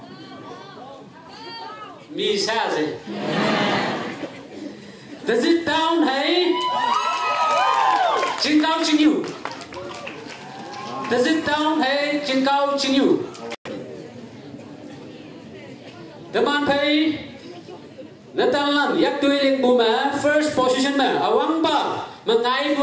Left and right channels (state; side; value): identical; both; correlation 1.00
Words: mi sa gì Tizit down hay Chính cao chính yêu. Does it down hay chính cao chính yêu. Teman pay Natalan yak tui ling buma first position ma awang ba mengai